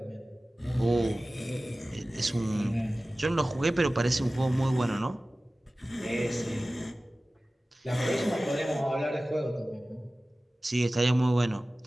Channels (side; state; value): both; normal; correlation 0.97